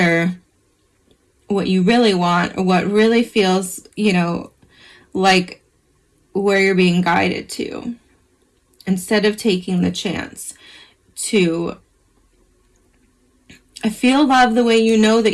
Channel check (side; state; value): both; identical; correlation 1.00